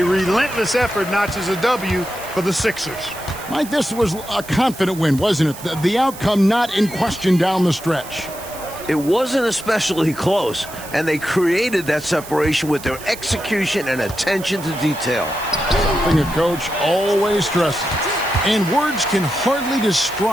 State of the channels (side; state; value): right; noise; hiss, 15 dB below the sound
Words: relentless effort notches a W for the Sixers. Mike, this was a confident win, wasn't it? The outcome not in question down the stretch. It wasn't especially close, and they created that separation with their execution and attention to detail. Something a coach always stresses. And words can hardly